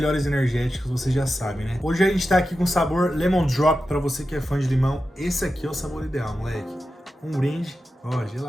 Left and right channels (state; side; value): normal; both; correlation 0.91